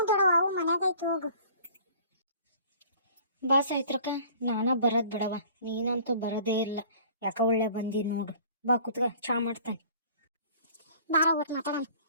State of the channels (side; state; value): both; inverted; correlation -0.51